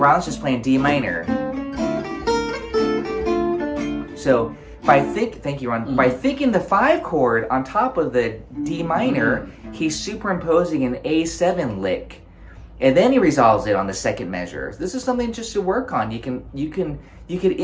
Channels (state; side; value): identical; both; correlation 1.00